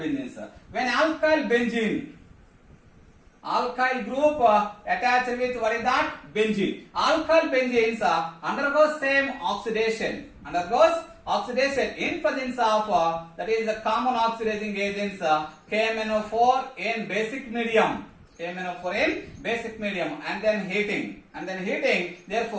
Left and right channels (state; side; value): identical; both; correlation 1.00